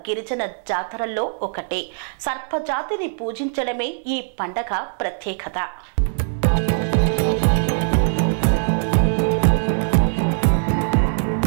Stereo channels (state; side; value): silent; left; 65 dB below the other